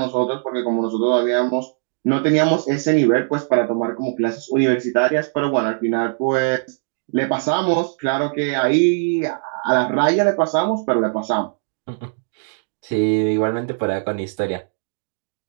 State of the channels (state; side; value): silent; left; digital silence